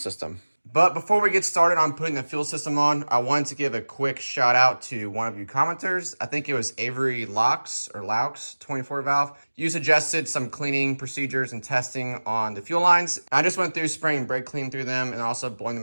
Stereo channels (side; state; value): both; inverted; correlation -1.00